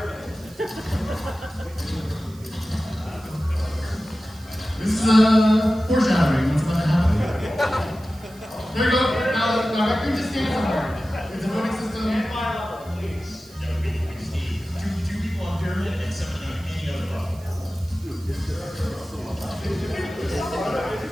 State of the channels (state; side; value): noise; right; hiss, 24 dB below the sound